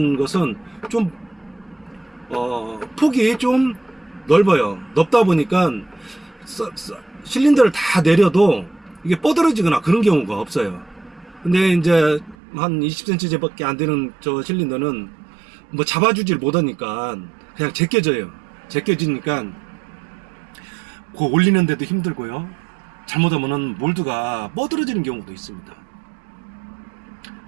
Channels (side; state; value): left; drops out; at 12.4 s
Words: 것은 좀 폭이 좀 넓어요. 넓다 보니까 실린더를 다 내려도 이게 뻗어지거나 그런 경우가 없어요. 근데 이제 한 20cm 밖에 안 되는 저 실린더는 뭐 잡아주질 못하니까 그냥 제껴져요. 제껴지니까 그 올리는데도 힘들고요. 잘못하면은 몰드가 뻗어지는 경우도 있습니다.